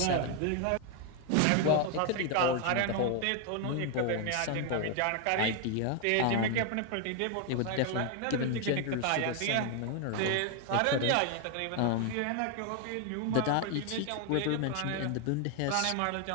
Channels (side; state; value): both; different; correlation 0.01